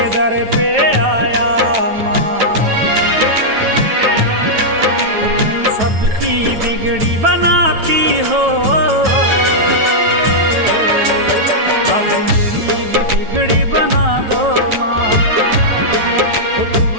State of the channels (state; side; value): late; left; 9.2 ms